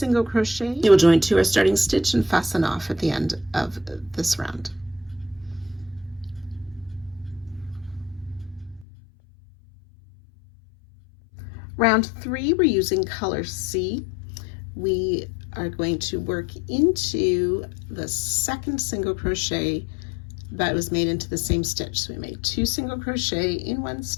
crochet. You will join to our starting stitch and fasten off at the end of this round. Round 3, we're using color C. We are going to work into the second single crochet that was made into the same stitch. So we made 2 single crochet in 1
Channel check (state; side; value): drops out; right; at 8.8 s